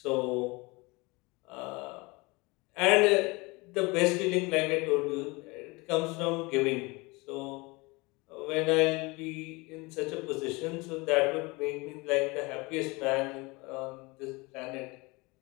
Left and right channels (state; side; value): quieter; right; 25.3 dB